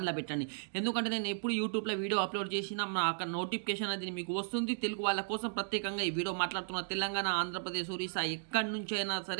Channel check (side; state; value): left; silent; digital silence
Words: పెట్టండి. ఎందుకంటే నేను ఎప్పుడు యూట్యూబ్లో వీడియో అప్లోడ్ చేసినా అక్కడ నోటిఫికేషన్ అది మీకు వస్తుంది. తెలుగు వాళ్ళ కోసం ప్రత్యేకంగా ఈ వీడియో మాట్లాడుతున్న తెలంగాణ, ఆంధ్రప్రదేశ్, ఒరిస్సా ఎక్కడి నుంచి అయినా